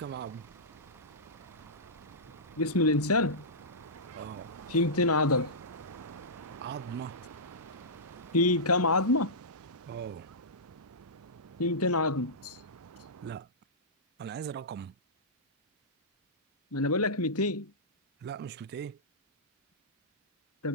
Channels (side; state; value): both; normal; correlation -0.15